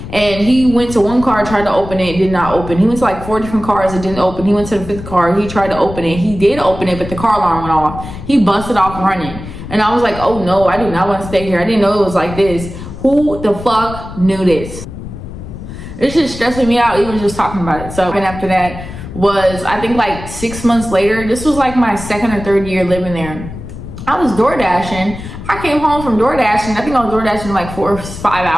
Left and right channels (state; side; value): noise; left; rumble, 11 dB below the sound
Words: And he went to one car, tried to open it, did not open. He went to like 4 different cars, it didn't open. He went to the 5th car, he tried to open it. He did open it, but the car alarm went off. He busted off running. And I was like, oh no, I do not want to stay here. I didn't know it was like this. Who the fuck knew this? It's just stressing me out even just talking about it. So, and after that was, I think like 6 months later, this was like my 2nd or 3rd year living there. I was door dashing. I came home from door dashing. I think I was door dashing like 4 or 5